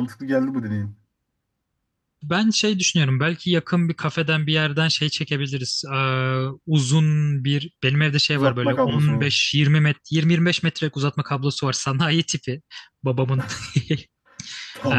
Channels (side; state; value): both; identical; correlation 1.00